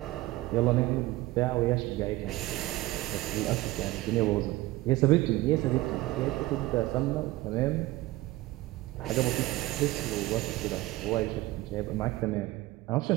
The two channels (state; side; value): quieter; left; 18.4 dB